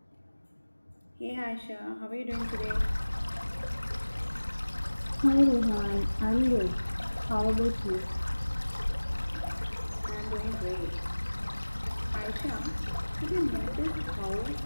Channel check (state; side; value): inverted; both; correlation -1.00